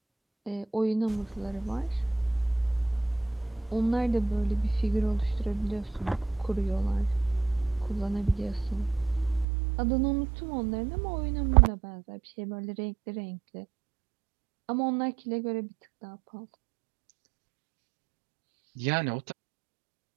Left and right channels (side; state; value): left; drops out; at 9.5 s